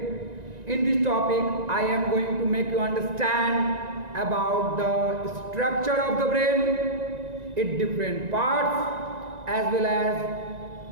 In this topic, I am going to make you understand about the structure of the brain, its different parts, as well as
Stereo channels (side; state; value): left; late; 1.9 ms